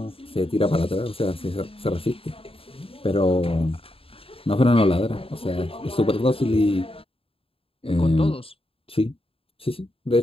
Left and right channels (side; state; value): right; late; 0.27 ms